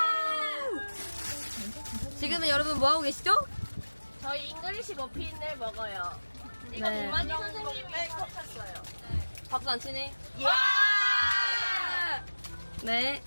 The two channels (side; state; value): both; inverted; correlation -1.00